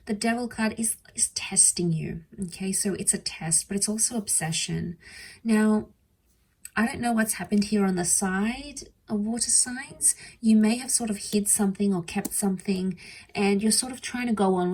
The Devil card is testing you, okay? So it's a test, but it's also obsession. Now, I don't know what's happened here on the side of water signs. You may have sort of hid something or kept something, and you're sort of trying to go on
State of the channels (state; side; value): identical; both; correlation 1.00